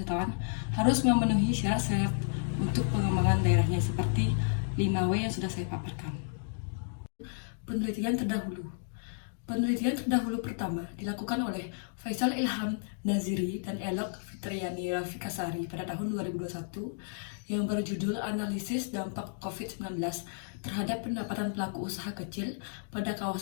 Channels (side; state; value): right; silent; digital silence